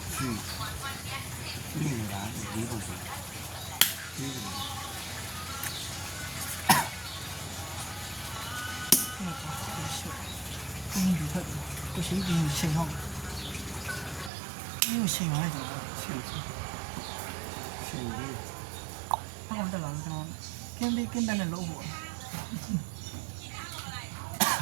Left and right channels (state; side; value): drops out; left; at 14.3 s